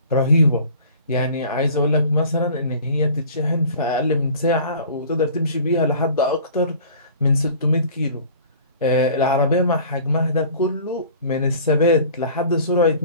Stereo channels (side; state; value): both; inverted; correlation -0.46